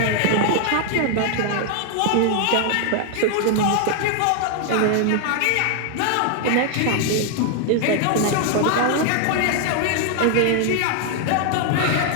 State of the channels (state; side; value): different; both; correlation 0.00